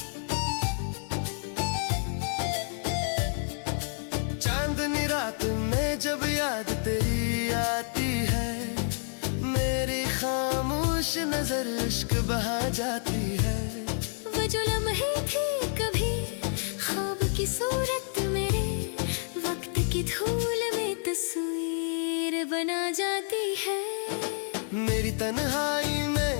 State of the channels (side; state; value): right; silent; 59 dB below the other